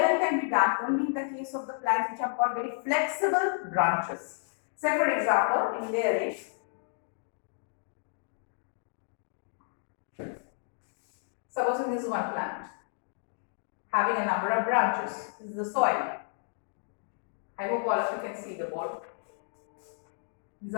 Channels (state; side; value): silent; right; digital silence